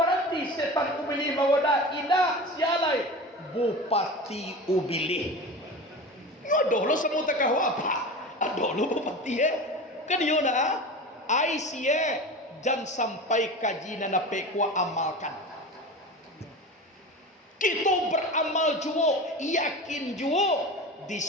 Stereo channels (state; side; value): normal; both; correlation 0.31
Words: setan ubilih mawada ina sialai bupati ubilih nyodoh lo semua takahu apa adoh lo bupati kan yo na ai sie jan sampai kaji na pekwa amalkan kita beramal juo yakin juo